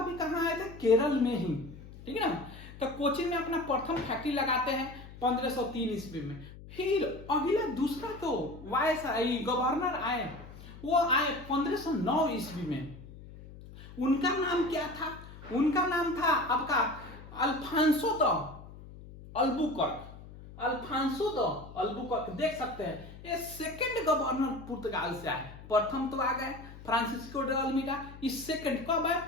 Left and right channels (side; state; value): left; noise; hum, 16 dB below the sound